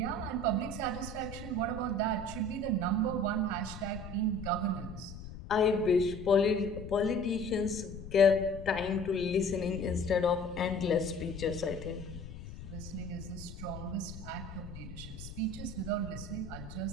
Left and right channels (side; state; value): left; noise; rumble, 11 dB below the sound